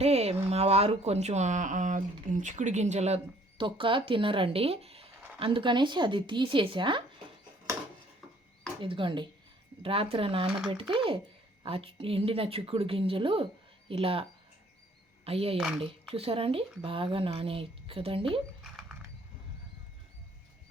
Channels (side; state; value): both; normal; correlation 0.60